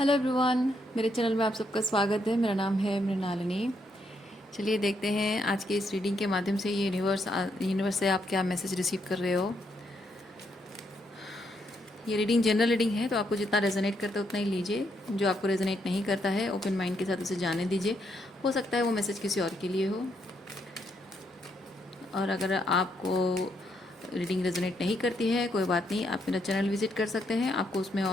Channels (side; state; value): both; normal; correlation 0.76